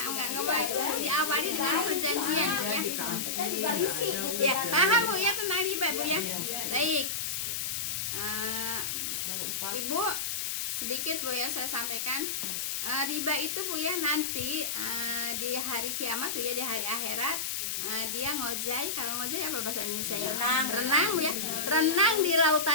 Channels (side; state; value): left; noise; hiss, 1 dB below the sound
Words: boleh. Diawali dengan perjanjian ya. Kita juga risih gitu. Ya, kan. paham Bu ya tentang riba Bu ya. Baik. Ibu sedikit Bu ya saya sampaikan. Riba itu Bu ya nanti di hari kiamat Bu ya, di hari akhirat dia ngojai. Kalau ngojai apa bahasa Indonesia ya? Renang Bu ya. Renang di